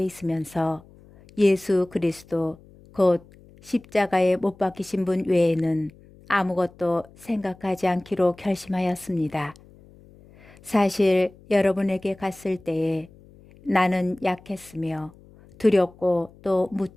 있으면서 예수 그리스도 곧 십자가에 못 박히신 분 외에는 아무것도 생각하지 않기로 결심하였습니다. 사실 여러분에게 갔을 때에 나는 약했으며 두렵고 또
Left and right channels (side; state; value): left; noise; hum, 25 dB below the sound